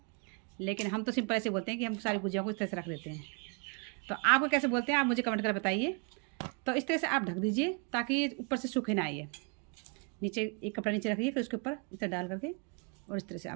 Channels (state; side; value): quieter; left; 36.3 dB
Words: लेकिन हम तो सिंपल ऐसे बोलते हैं कि हम सारी गुजिया को इस तरह से रख देते हैं। तो आपको कैसे बोलते हैं आप मुझे कमेंट कर बताइए। तो इस तरह से आप ढक दीजिए ताकि ये ऊपर से सूखे ना आइए। नीचे एक कपड़ा नीचे रखिए, फिर उसके ऊपर इस तरह डाल करके और इस तरह से